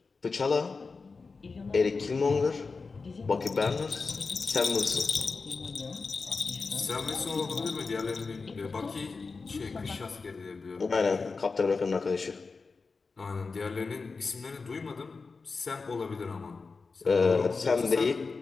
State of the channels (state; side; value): quieter; right; 4.4 dB